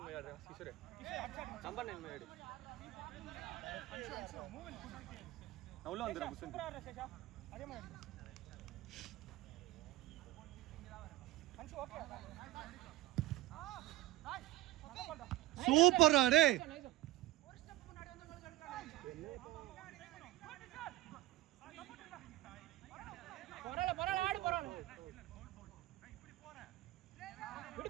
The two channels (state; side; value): quieter; left; 16.0 dB